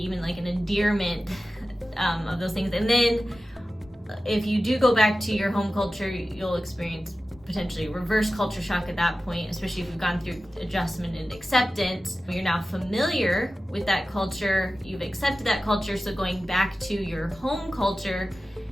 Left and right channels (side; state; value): both; normal; correlation 0.95